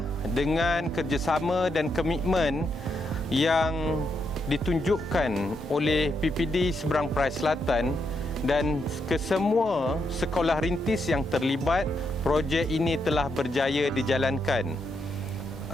dengan kerjasama dan komitmen yang ditunjukkan oleh PPD Seberang Perai Selatan dan kesemua sekolah rintis yang terlibat, projek ini telah berjaya dijalankan.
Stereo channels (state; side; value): normal; both; correlation 0.80